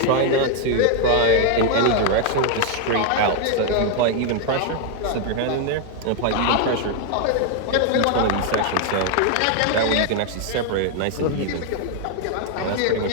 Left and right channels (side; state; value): both; different; correlation 0.00